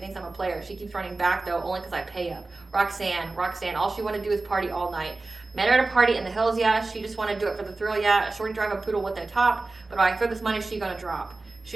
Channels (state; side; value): quieter; left; 3.4 dB